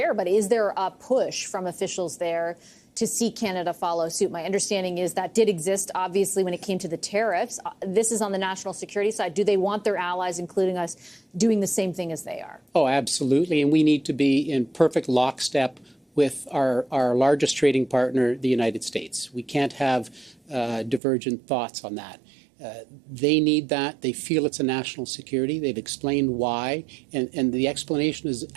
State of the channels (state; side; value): drops out; left; at 21.0 s